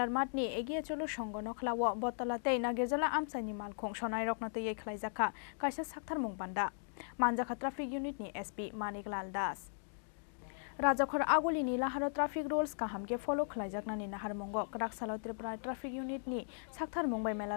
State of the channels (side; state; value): right; silent; digital silence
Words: ni egiye cholo songono khlawo Battala tei Nagerjala Amchaini Malkhung Sonairokno tei Khlaijakha Kaisa Saktharmung Panda Manjakha traffic unit ni SP Das Rajakhor aguli ni laharo traffic rules kaham ke follow Khlaijakha ni Nagerjala Kraksalo Tripura traffic unit ni Saktharmung bai